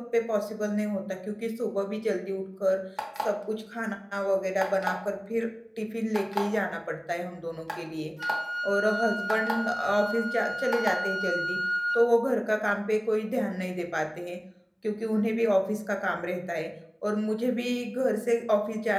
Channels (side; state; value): both; identical; correlation 1.00